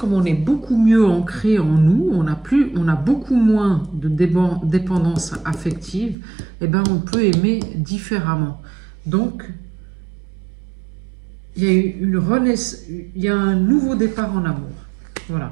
on est beaucoup mieux ancré en nous, on a beaucoup moins de dépendance affective, et ben on peut aimer différemment. Donc il y a une renaissance, il y a un nouveau départ en amour.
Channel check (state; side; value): drops out; left; at 6.2 s